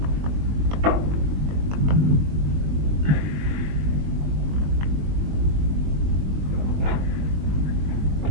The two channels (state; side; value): late; left; 21 ms